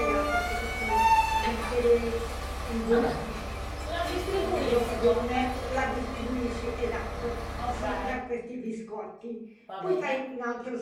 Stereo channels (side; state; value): both; identical; correlation 1.00